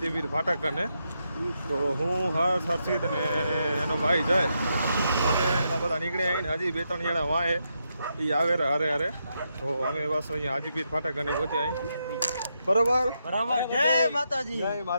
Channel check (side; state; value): both; inverted; correlation -0.82